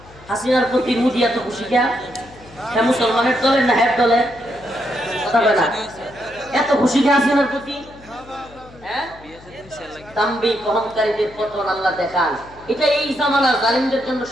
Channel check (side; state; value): left; noise; hum, 22 dB below the sound